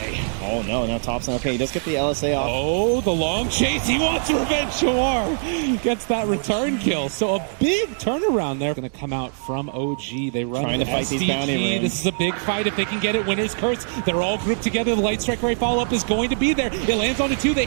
Oh no, now Thompson. Okay, he does get the LSA off. Oh, the long chase. He wants revenge. Yawar gets that return kill. So a big turnaround there. Going to come out from OG. They run trying to fight these bounty runes. This is a big fight if they can get it. Winner's Curse. They're all grouped together. The Light Strike Array follow-up is going to be there. It lands onto 2. They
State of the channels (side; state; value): left; silent; digital silence